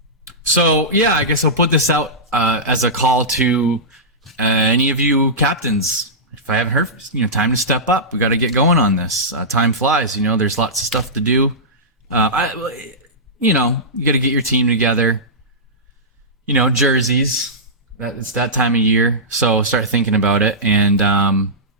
So yeah, I guess I'll put this out as a call to any of you captains. If I haven't heard, time to step up. We got to get going on this. Time flies. There's lots of stuff to do. You got to get your team together. Jerseys. It's that time of year, so start thinking about it. And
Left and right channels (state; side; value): normal; both; correlation -0.15